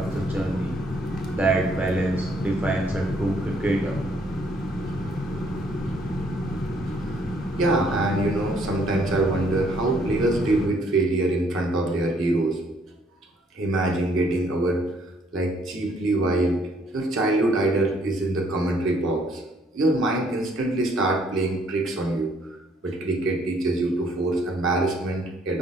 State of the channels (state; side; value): normal; both; correlation 0.66